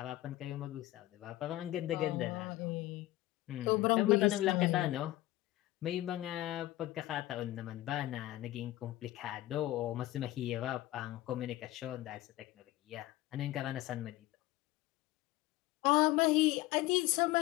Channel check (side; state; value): right; quieter; 16.6 dB